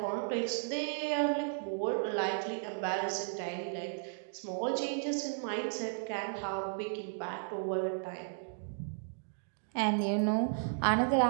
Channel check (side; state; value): left; silent; digital silence